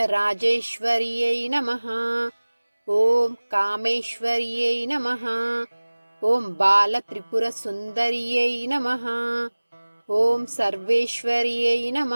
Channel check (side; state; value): both; inverted; correlation -1.00